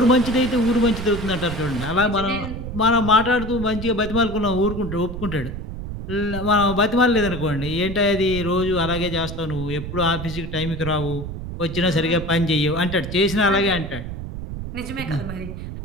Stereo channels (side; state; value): right; noise; rumble, 8 dB below the sound